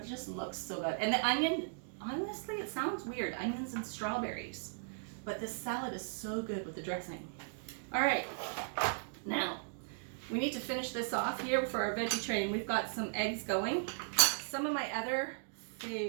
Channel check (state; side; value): silent; left; digital silence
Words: it just looks so good. And the onion, honestly, it sounds weird, onions and strawberries. But this salad is so good with the dressing. All right, now we need to finish this off here for our veggie train. We've got some eggs going. Some of my other